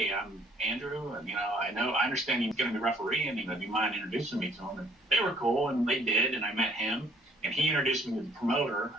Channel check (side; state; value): both; normal; correlation 0.61